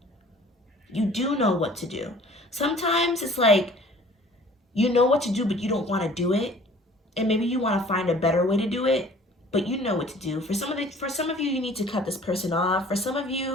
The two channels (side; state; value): both; normal; correlation 0.50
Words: You do know what to do. Sometimes it's like, you know what to do, but you don't want to do it. And maybe you want to find a better way to do it, but you know what to do. For some of you, you need to cut this person off. For some of